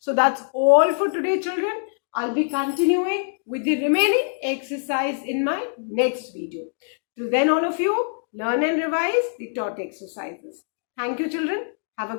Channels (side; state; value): right; silent; digital silence